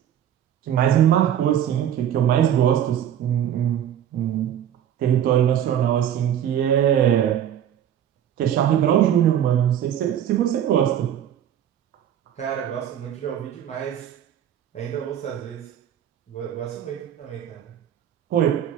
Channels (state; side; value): quieter; left; 10.1 dB